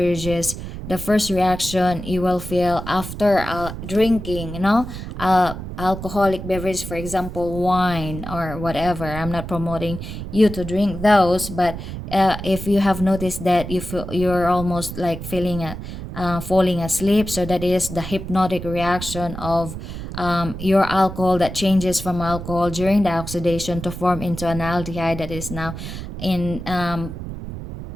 the first reaction you will feel after drinking, alcoholic beverage, for example, wine or whatever. I'm not promoting you to drink those, but if you have noticed that you're almost like feeling falling asleep, so that is the hypnotic reaction of your alcohol that changes from alcohol during the oxidation to form into an aldehyde that is now in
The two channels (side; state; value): right; noise; rumble, 9 dB below the sound